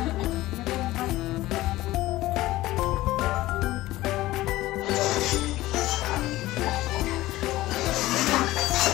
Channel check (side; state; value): right; quieter; 17.0 dB